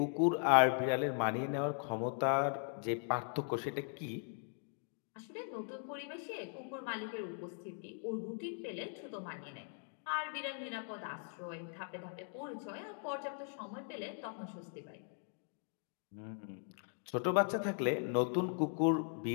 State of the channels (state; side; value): silent; right; 52 dB below the other